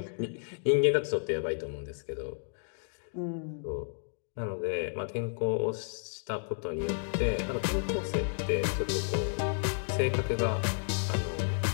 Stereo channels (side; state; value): right; silent; digital silence